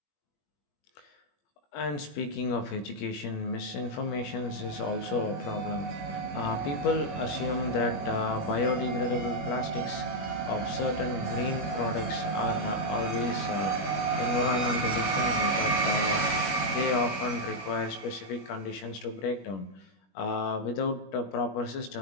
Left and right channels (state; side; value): late; right; 21 ms